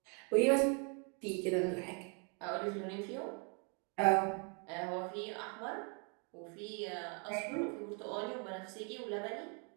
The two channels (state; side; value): quieter; left; 37.2 dB